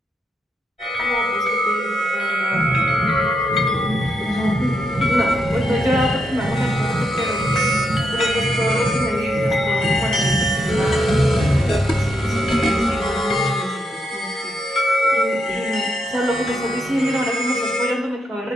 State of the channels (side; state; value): both; normal; correlation 0.81